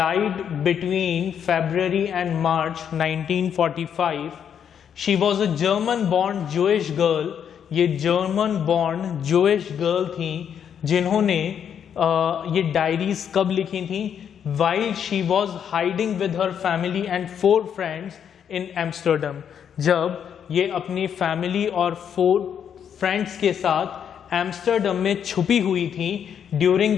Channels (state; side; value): quieter; right; 8.3 dB